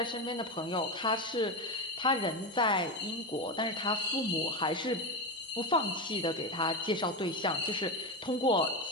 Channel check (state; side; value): normal; both; correlation 0.15